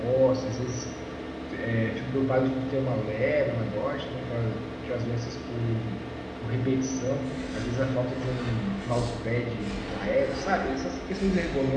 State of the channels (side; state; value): both; identical; correlation 1.00